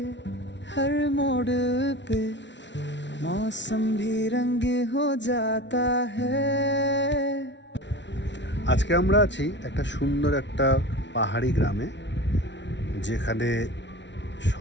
हर मोड़ पे मौसम भी रंग हो जाता है। আজকে আমরা আছি একটা সুন্দর একটা পাহাড়ি গ্রামে, যেখানে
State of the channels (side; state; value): right; late; 0.52 ms